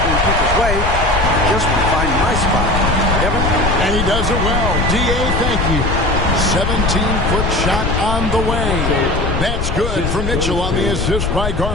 in people's way. I just want to find my spot. Kevin? And he does it well. D.A., thank you. 17-foot shot on the way. That's good for Mitchell on the assist by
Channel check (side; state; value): left; noise; rumble, 2 dB below the sound